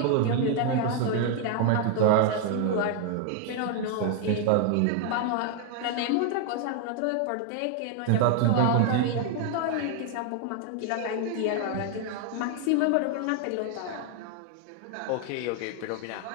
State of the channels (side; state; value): both; different; correlation 0.00